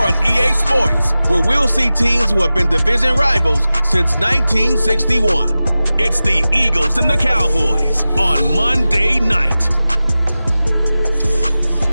on EA Sports, where we'll see teams who have been division rivals since 1961. It's the Eagles and the Cowboys on Monday night.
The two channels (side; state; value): both; inverted; correlation -0.95